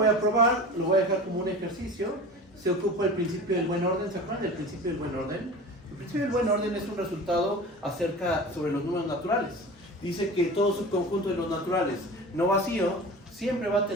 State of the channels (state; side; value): normal; both; correlation 0.35